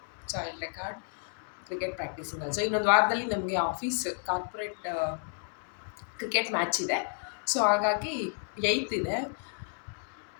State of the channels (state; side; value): silent; right; 57 dB below the other